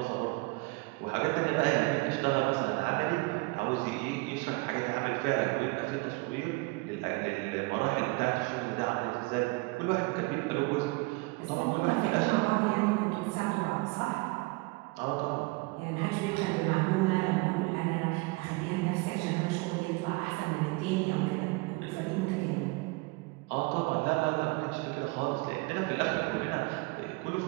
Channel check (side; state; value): left; quieter; 25.9 dB